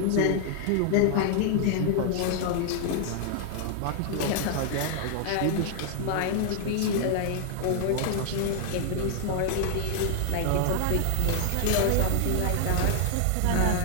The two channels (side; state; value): both; different; correlation 0.00